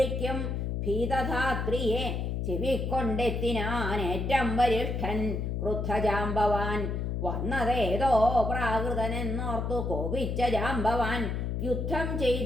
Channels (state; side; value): noise; left; hum, 1 dB below the sound